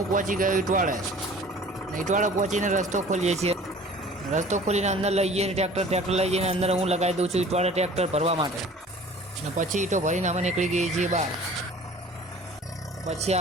પહોંચી ગયો ઈટવાડે। ઈટવાડે પહોંચીને રસ્તો ખોલીએ છીએ। રસ્તો ખોલીને અંદર લઈ જઈએ ટ્રેક્ટર લઈ જઈને અંદર હું લગાવી દઉં છું ઈટવાડે ટ્રેક્ટર ભરવા માટે। અને પછી ઈંટો ભરીને અમે નીકળી ગઈએ છીએ બહાર। પછી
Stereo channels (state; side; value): normal; both; correlation 0.47